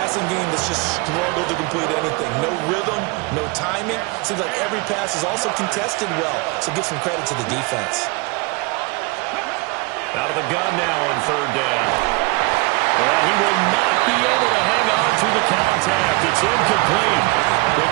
game that's just struggled to complete anything. No rhythm, no timing. Seems like every pass is also contested well, so give some credit to the defense. Out of the gun now on third down. And he will not be able to hang on through the contact. It's incomplete. The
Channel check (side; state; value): left; quieter; 26.0 dB